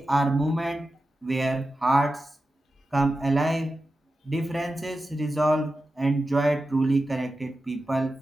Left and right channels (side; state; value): both; normal; correlation 0.92